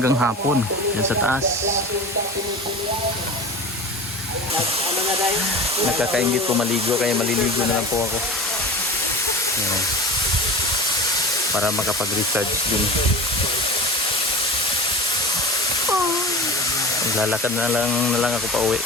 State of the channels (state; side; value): normal; both; correlation 0.34